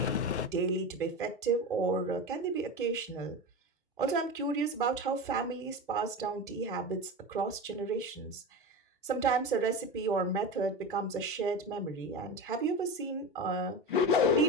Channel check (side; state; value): both; normal; correlation 0.25